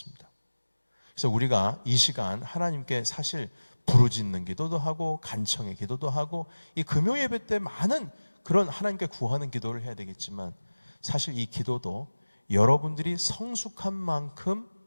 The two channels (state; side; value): inverted; both; correlation -1.00